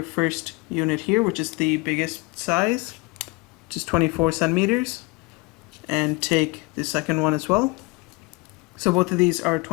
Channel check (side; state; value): right; quieter; 25.1 dB